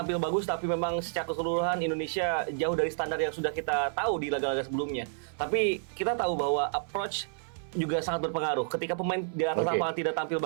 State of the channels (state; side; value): silent; left; 57 dB below the other